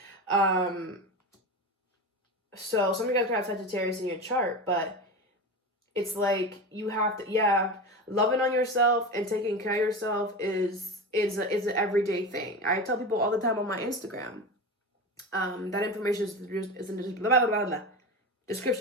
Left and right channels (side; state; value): both; normal; correlation 0.25